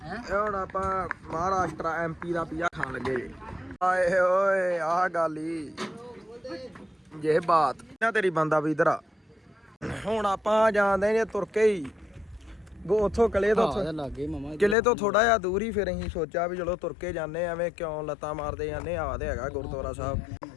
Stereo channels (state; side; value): drops out; right; at 14.8 s